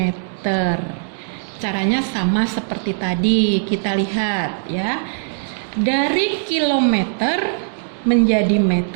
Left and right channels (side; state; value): left; silent; digital silence